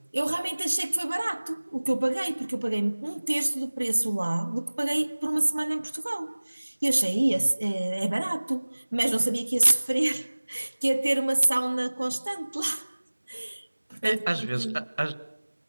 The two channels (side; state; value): both; inverted; correlation -1.00